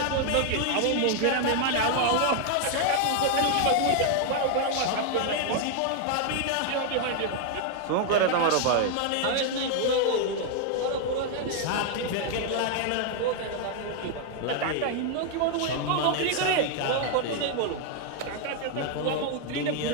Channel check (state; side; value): different; both; correlation 0.00